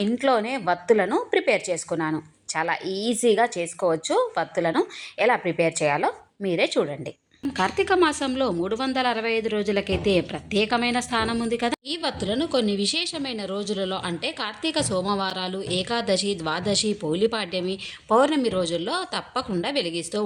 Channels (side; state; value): both; identical; correlation 1.00